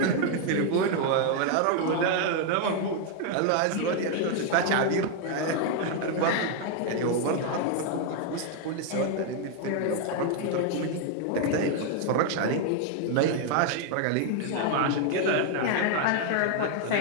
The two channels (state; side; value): different; both; correlation 0.00